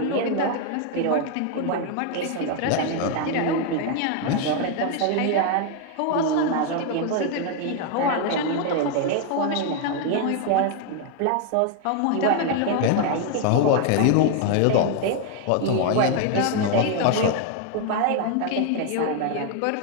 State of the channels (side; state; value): both; different; correlation 0.00